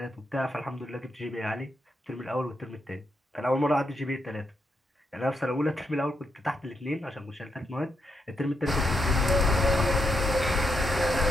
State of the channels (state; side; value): normal; both; correlation 0.81